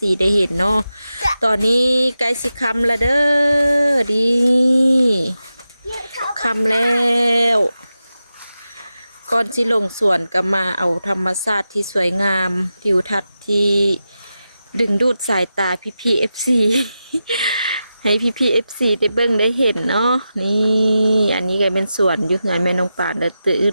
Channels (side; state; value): both; inverted; correlation -0.91